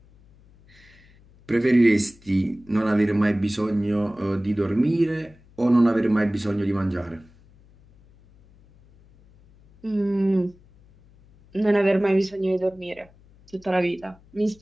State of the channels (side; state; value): left; noise; hum, 28 dB below the sound